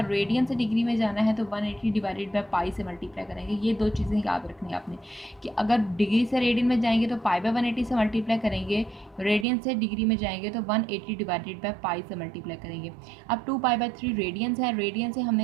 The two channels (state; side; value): drops out; left; at 9.5 s